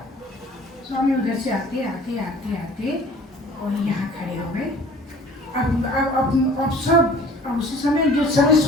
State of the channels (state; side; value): normal; both; correlation 0.48